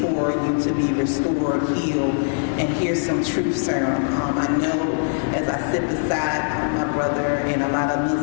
you to be restored, healed, and hear some truth serum. I know as I sit beside my brother, and a lot of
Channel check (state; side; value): silent; right; digital silence